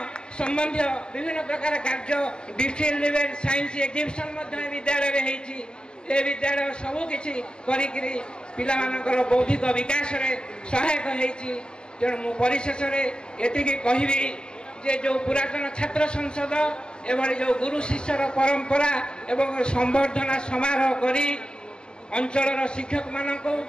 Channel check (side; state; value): right; late; 0.049 ms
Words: ସମ୍ବନ୍ଧୀୟ ବିଭିନ୍ନ ପ୍ରକାର କାର୍ଯ୍ୟ, ଡିଷ୍ଟ୍ରିକ୍ଟ ଲେଭେଲ ସାଇନ୍ସ ଏକ୍ଜିବିସନ୍ ମଧ୍ୟ ଏ ବିଦ୍ୟାଳୟରେ ହେଇଛି। ଏ ବିଦ୍ୟାଳୟ ସବୁକିଛି କରିକିରି ପିଲାମାନଙ୍କର ବୌଦ୍ଧିକ ବିକାଶରେ ସହାୟକ ହେଇଛି। ତେଣୁ ମୁଁ ପରିଶେଷରେ ଏତିକି କହିବି ଯେ ଯେଉଁ ପୁରାତନ ଛାତ୍ର ସଂସଦ ଏଭଳି ଯେଉଁ ଗୁରୁ ଶିଷ୍ୟର ପରମ୍ପରା ଏବଂ ସମ୍ବର୍ଦ୍ଧନା ସମାରୋହ କରି ଅଞ୍ଚଳର ଶିକ୍ଷକମାନଙ୍କୁ